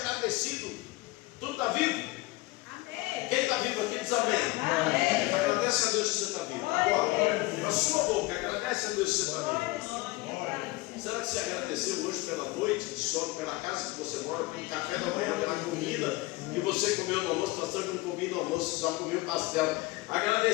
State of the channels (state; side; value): quieter; right; 21.2 dB